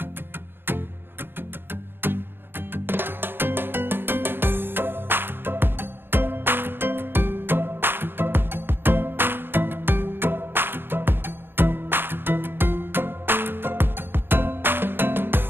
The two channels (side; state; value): left; late; 0.099 ms